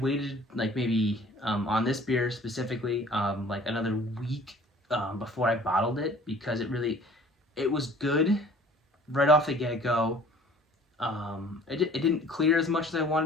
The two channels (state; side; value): normal; both; correlation 0.51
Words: waited like maybe on this beer specifically like another week before I bottled it, because it was good right off the get-go. It didn't clear as much as I